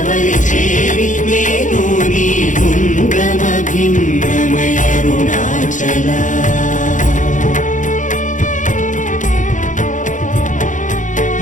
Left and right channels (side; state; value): right; late; 0.37 ms